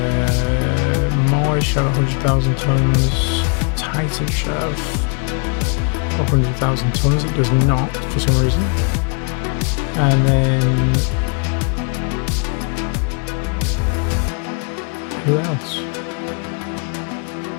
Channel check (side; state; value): right; quieter; 39.1 dB